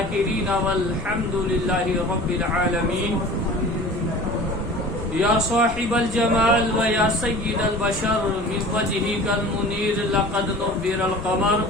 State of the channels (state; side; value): normal; both; correlation 0.41